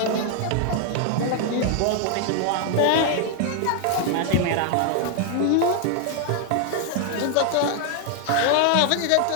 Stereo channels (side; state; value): both; different; correlation 0.00